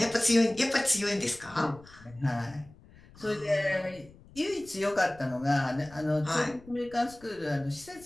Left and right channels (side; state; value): left; noise; rumble, 23 dB below the sound